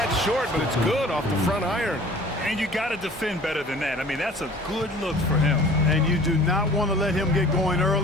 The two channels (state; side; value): normal; both; correlation 0.47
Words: short, but it's good off the front iron. And you got to defend better than that. I mean, that's a good look for him. And you do not want to let him get going